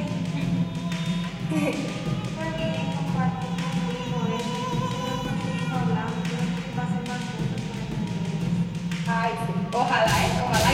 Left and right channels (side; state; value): both; identical; correlation 1.00